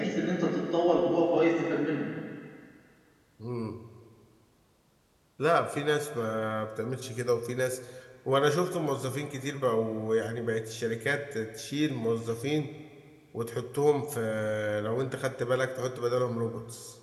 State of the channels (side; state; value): both; identical; correlation 1.00